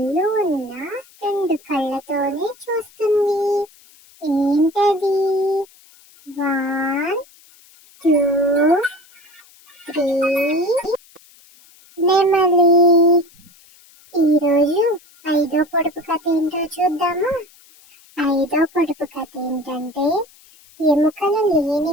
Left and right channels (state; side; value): noise; left; hiss, 27 dB below the sound